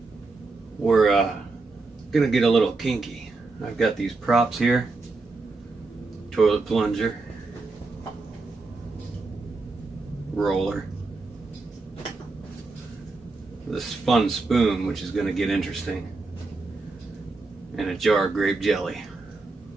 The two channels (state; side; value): quieter; left; 3.6 dB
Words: we're gonna get a little kinky. I've got these props here, toilet plunger, roller, this fun spoon, which is gonna get interesting, and a jar of grape jelly.